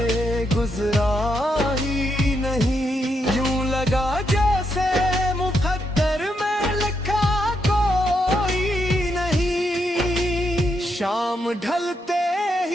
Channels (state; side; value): normal; both; correlation 0.80